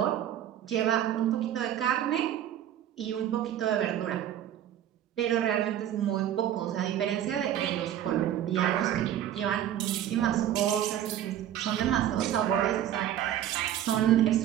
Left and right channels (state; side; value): quieter; left; 11.2 dB